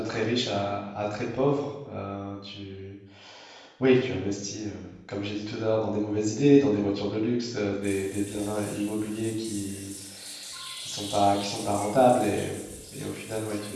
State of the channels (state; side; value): identical; both; correlation 1.00